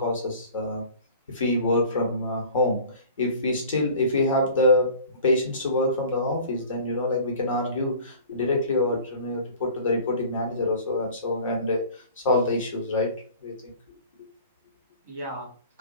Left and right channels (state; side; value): inverted; both; correlation -0.44